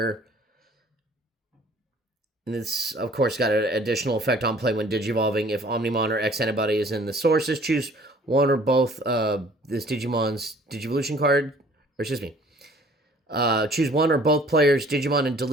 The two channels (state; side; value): normal; both; correlation 0.54